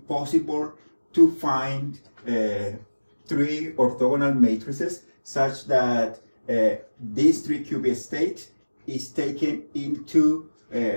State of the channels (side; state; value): both; inverted; correlation -1.00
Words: to find 3 orthogonal matrices such that this 3-qubit state is taken into